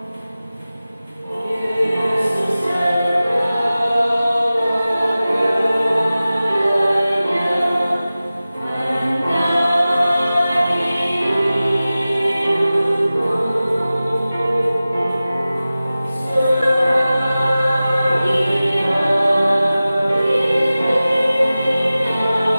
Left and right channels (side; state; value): both; inverted; correlation -0.96